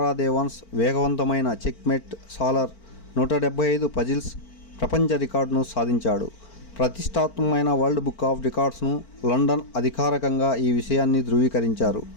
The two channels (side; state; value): right; late; 4.4 ms